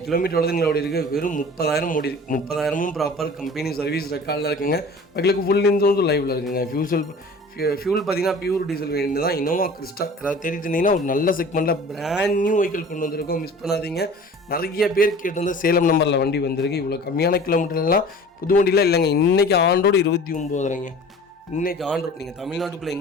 கிலோமீட்டர் எவ்வளோ ஓடி இருக்குது, வெறும் 30,000 ஓடி இருக்குது. 30,000 ப்ராப்பர் கம்பெனி சர்வீஸ் ரெக்கார்டில் இருக்குங்க. வெஹிக்கிளுக்கு ஃபுல் இன்சூரன்ஸ் லைவில் இருக்குங்க. ஃபியூல் பார்த்தீங்கன்னா பியூர் டீசல் வேரியண்ட் தான். இனோவா கிறிஸ்டா ஏதாவது தேடிட்டு இருந்தீங்கன்னா ஒரு நல்ல செக்மெண்ட்டில் பிராண்ட் நியூ வெஹிக்கிள் கொண்டு வந்திருக்கோம், மிஸ் பண்ணாதீங்க. நிறைய பேர் கேட்டிருந்த சேலம் நம்பரில் வண்டி வந்திருக்கு. இவ்வளோ கம்மியான கிலோமீட்டர்லாம் புது வண்டியில் இல்லைங்க. இன்றைக்கி ஆண்டோடு 29,000ங்க. இன்றைக்கி ஆண்டோடு நீங்கள் தமிழ்நாட்டுக்குள்ளே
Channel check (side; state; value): both; normal; correlation 0.43